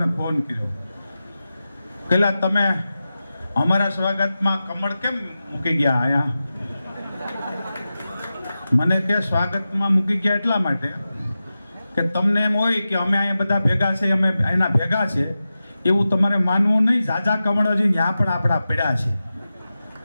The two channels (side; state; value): both; inverted; correlation -0.93